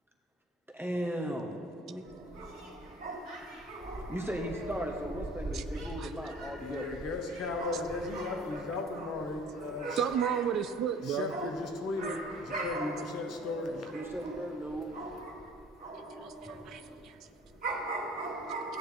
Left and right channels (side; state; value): both; normal; correlation 0.50